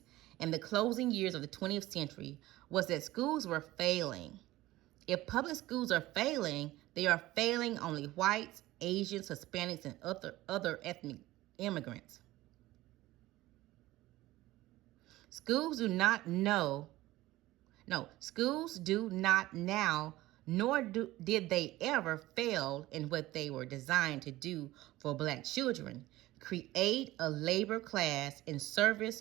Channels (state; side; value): quieter; left; 17.3 dB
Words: in the closing years of the 20th century was that schools were failing. If public schools are failing, they are failing only whites, Asians, Hispanics, and other ethnic immigrants. Schools do not now, nor did they ever fail in what they were designed to do for black children: create a labor class in service